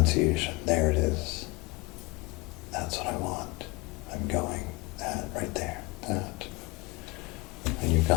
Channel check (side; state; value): right; quieter; 24.0 dB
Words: there it is. That's what I want. I'm going. That, right there. That. And you've